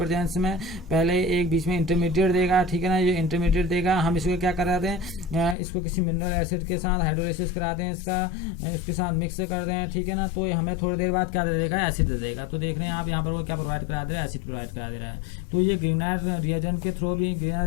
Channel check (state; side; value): drops out; right; at 5.6 s